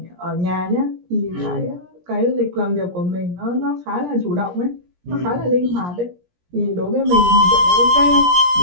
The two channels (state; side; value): late; left; 17 ms